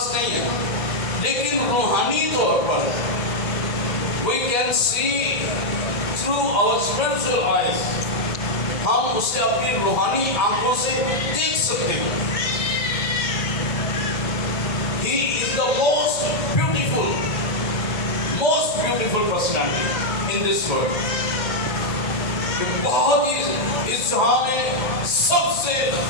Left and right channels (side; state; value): right; late; 2.1 ms